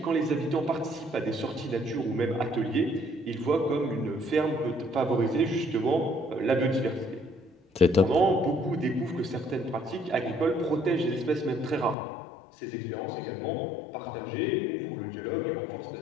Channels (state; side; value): drops out; right; at 12.0 s